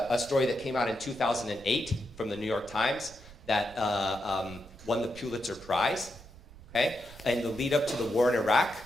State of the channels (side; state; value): right; noise; rumble, 19 dB below the sound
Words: story that came out in 2008 from the New York Times that won the Pulitzer Prize, okay? And the lead up to the war in Iraq,